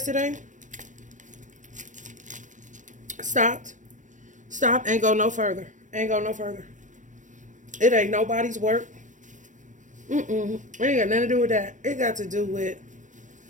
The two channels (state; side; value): late; left; 0.37 ms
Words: stopped. Ain't go no further. It ain't nobody's work. It ain't got nothing to do with that. It got to do with